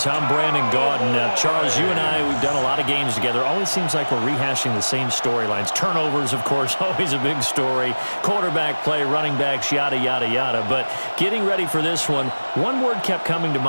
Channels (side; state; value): both; inverted; correlation -1.00